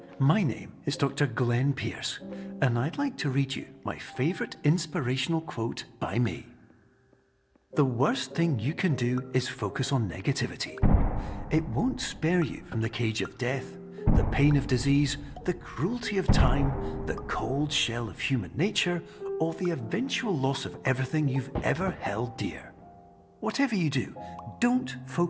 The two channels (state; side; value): identical; both; correlation 1.00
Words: my name is Dr. Glenn Pierce, and I'd like to read you my favorite inspirational quote by me. The worst thing you can do is focus on negativity. It won't spare you from the cage of death, the pain of disease, the cruelty of time, the cold shell of human nature, or the eventual loss of everything you've ever held dear. Whatever you do, don't